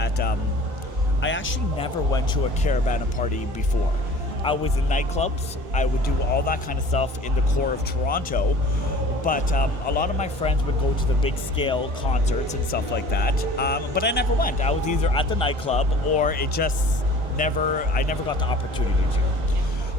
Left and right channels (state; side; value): late; left; 1.5 ms